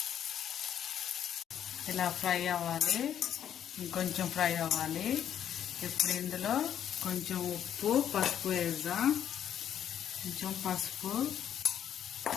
ఇలా ఫ్రై అవ్వాలి. ఇంకొంచెం ఫ్రై అవ్వాలి. ఇప్పుడు ఇందులో కొంచెం ఉప్పు పసుపు వేద్దాం. కొంచెం పసుపు,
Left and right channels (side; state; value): right; quieter; 9.8 dB